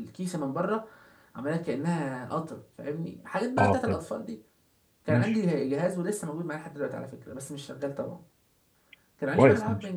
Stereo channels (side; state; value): both; identical; correlation 1.00